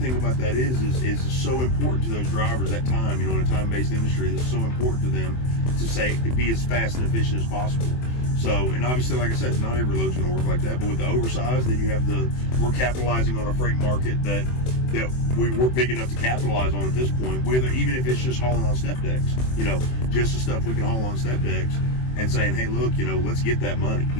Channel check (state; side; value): late; right; 24 ms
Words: about that is so important to those drivers at time, in a time-based industry, it's so important to them to be as fast and efficient as possible. So, and obviously, like I said, not every load's going to work like that. But with the oversized, then you have we're capitalizing on a freight market that we're big enough to capitalize on at this point. Even if it's just hauling on step decks, just the stuff we can haul on step decks, and saying, hey, look, let's get that money.